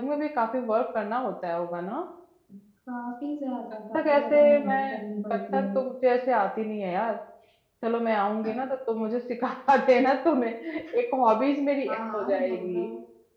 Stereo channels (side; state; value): both; identical; correlation 1.00